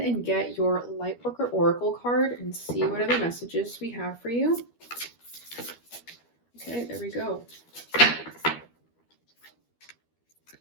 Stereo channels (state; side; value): late; right; 12 ms